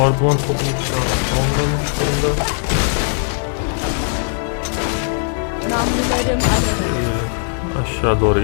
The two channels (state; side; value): silent; right; 60 dB below the other